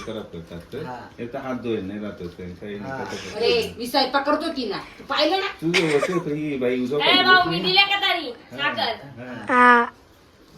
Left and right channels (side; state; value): both; identical; correlation 1.00